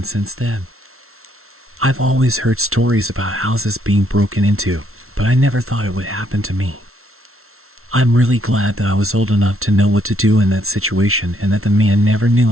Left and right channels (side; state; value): left; late; 0.62 ms